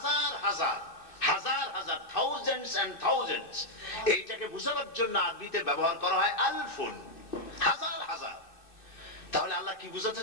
হাজার হাজার হাজার, থাউজেন্ডস এন্ড থাউজেন্ডস, এইটাকে বোঝানোর জন্য আরবিতে ব্যবহার করা হয় আলফুন, হাজার হাজার। তাহলে আল্লাহ কি বুঝাতে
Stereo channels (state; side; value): late; right; 2.6 ms